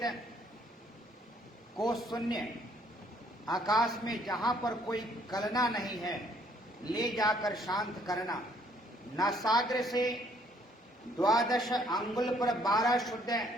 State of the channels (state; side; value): normal; both; correlation 0.64